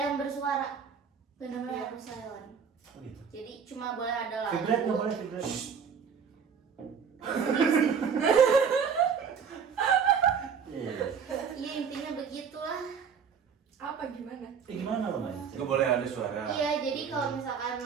yang bersuara. Benar-benar harus silent. Oh, gitu. Jadi cuma boleh ada lagu. Vibrat nggak boleh vibrat. Iya. Iya intinya begitulah. Apa gimana? Gimana lomba? Gak boleh ada suara. Iya, jadi kalau misalkan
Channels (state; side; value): quieter; left; 6.6 dB